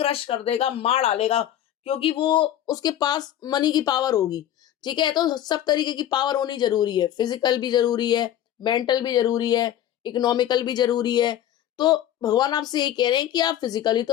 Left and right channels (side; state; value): right; quieter; 11.6 dB